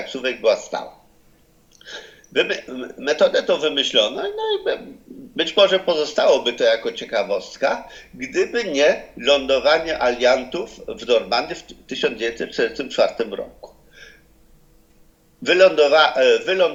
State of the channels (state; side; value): identical; both; correlation 1.00